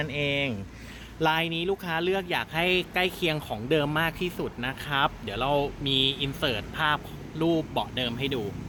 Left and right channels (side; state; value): both; identical; correlation 1.00